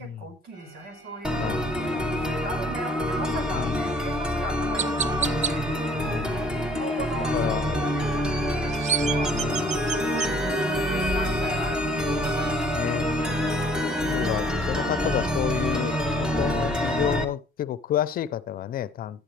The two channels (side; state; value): both; normal; correlation 0.57